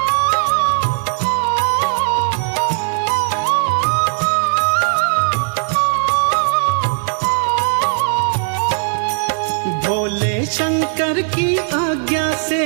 भोले शंकर की आज्ञा से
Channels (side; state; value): left; silent; digital silence